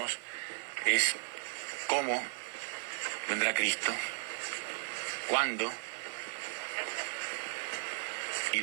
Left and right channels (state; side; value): silent; left; digital silence